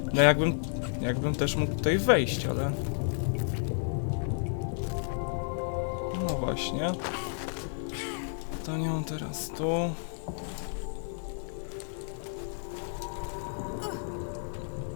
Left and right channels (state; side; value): silent; right; digital silence